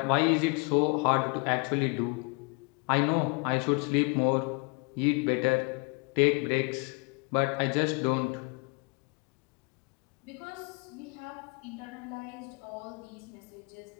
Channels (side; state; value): right; quieter; 32.1 dB